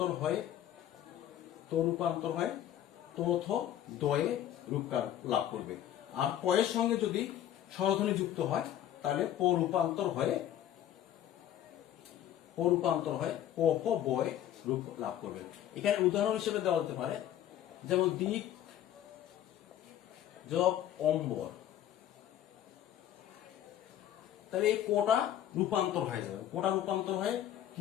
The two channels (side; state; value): right; quieter; 11.5 dB